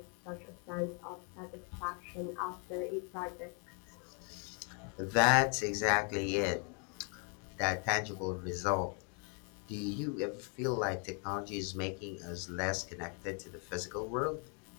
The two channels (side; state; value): right; quieter; 39.5 dB